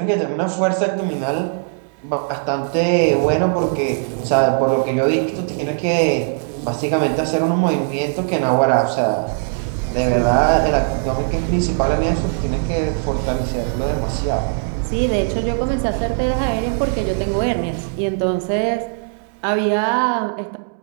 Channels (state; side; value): silent; left; 66 dB below the other